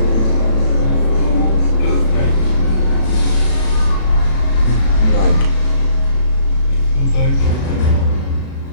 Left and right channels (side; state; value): right; late; 36 ms